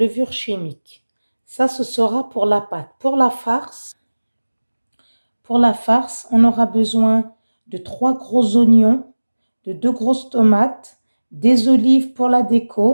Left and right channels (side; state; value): both; inverted; correlation -1.00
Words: chimique. Ça, ce sera pour la pâte. Pour la farce, on aura besoin de 3 gros oignons, de 2 grosses tomates, des olives pour la